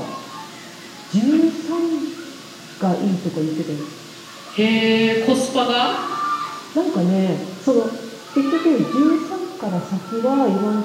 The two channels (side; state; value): both; identical; correlation 1.00